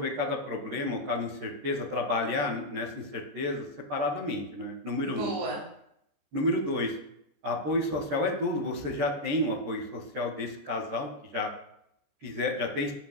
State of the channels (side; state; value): left; late; 14 ms